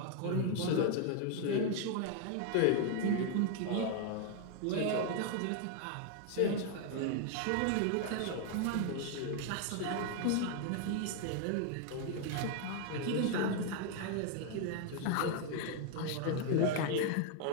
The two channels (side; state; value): both; different; correlation 0.00